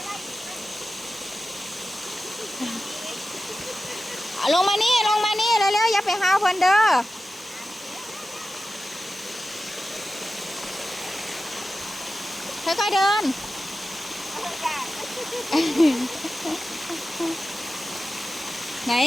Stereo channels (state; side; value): normal; both; correlation 0.93